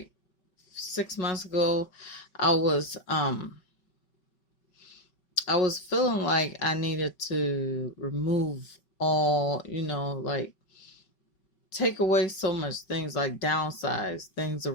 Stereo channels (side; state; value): right; late; 5.3 ms